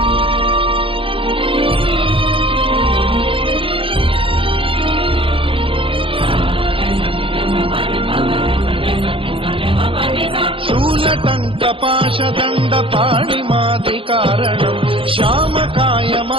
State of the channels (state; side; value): late; left; 0.26 ms